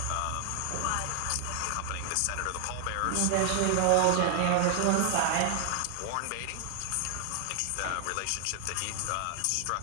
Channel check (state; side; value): different; both; correlation 0.00